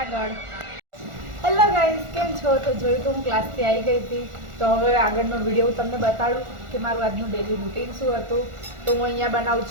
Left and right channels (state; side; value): late; left; 1.4 ms